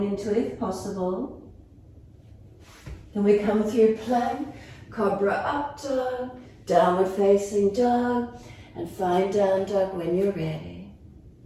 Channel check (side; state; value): both; identical; correlation 1.00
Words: into it if possible. Then we come through plank, cobra up dog, downward facing dog, and find down dog when you're ready.